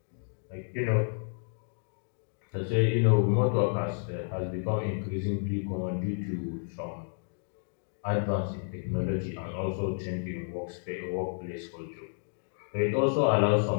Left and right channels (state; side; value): silent; right; digital silence